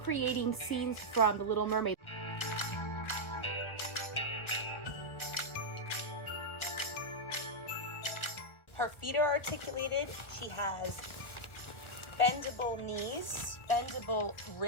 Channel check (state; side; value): late; right; 1.4 ms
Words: scenes from The Little Mermaid. Her feet are articulated. She has bendable knees, bendable